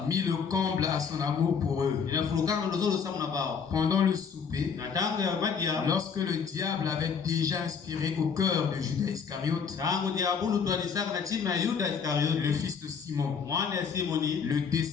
mis le comble à son amour pour eux. inafurukaka ndozolo samu na bao Pendant le souper, na tango ya madia lorsque le diable avait déjà inspiré au cœur de Judas Iscariote, tango diabulu twalisaka na chima ya Yuda le Iskariote fils de Simon, mwana ya Simoni le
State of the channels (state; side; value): quieter; right; 6.3 dB